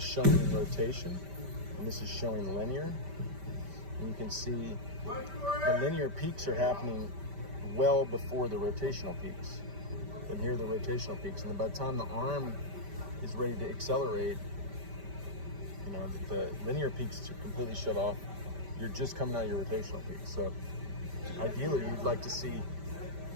rotation, and this is showing linear. And you can see the linear peaks are happening well before the rotational peaks. And here are the rotational peaks. And by the time the arm is ready to accelerate, you know, the linear peaks are completely shut off. You're just coming out of your rotational peak. So ideally, you'd like to see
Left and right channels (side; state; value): left; late; 5.1 ms